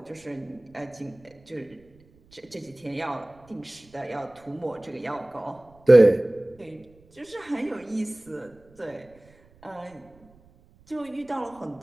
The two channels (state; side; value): noise; right; rumble, 28 dB below the sound